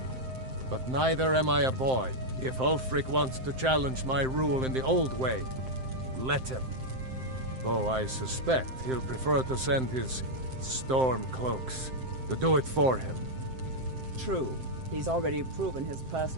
But neither am I a boy. If Ulfric wants to challenge my rule in the old way, let him. Though I suspect he'll prefer to send his storm cloaks to do it for him. True. He's already proven his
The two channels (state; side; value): late; left; 7.7 ms